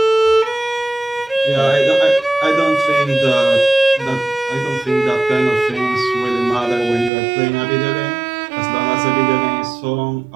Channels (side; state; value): left; drops out; at 7.1 s